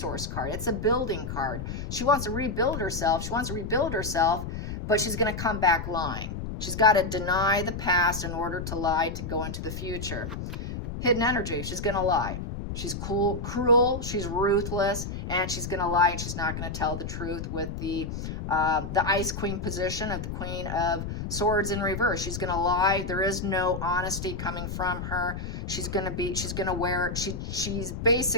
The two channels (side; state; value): left; noise; rumble, 6 dB below the sound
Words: card. It's a building card. She wants to rebuild herself. She wants to rebuild herself, but she's going to come back lying. She's got to deny the past in order to lie to go into the future. Hidden energy. She's going to lie. She's cruel, she's ruthless, and she's going to lie, and she's not going to tell the truth with the Ice Queen position of the Queen of Swords in reverse. She's going to lie. There is no honesty coming from her. She's